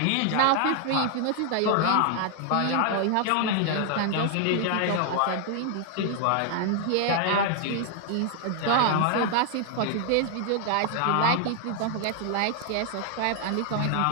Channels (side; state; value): both; different; correlation 0.00